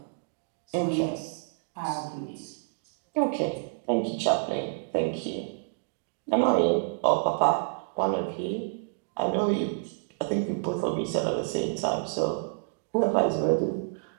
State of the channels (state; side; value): silent; left; digital silence